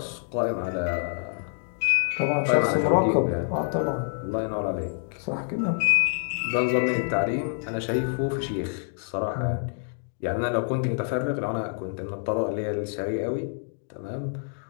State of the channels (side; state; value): right; silent; digital silence